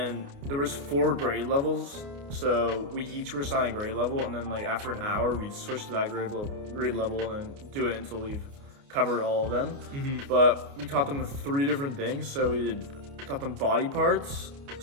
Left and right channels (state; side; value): late; left; 29 ms